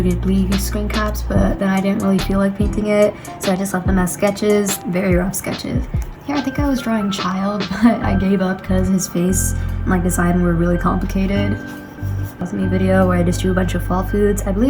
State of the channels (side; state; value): both; identical; correlation 1.00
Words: Ghibli screen caps, but then I didn't really feel like painting it, so I just left them as sketches, very rough sketches. Here, I think I was drawing Child, but I gave up because his face and like design were really complicated. Me video where I just drew a bunch of fall foods. I